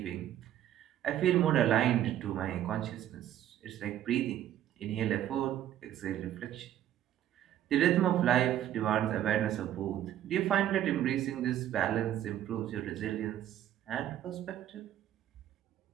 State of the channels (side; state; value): left; quieter; 11.7 dB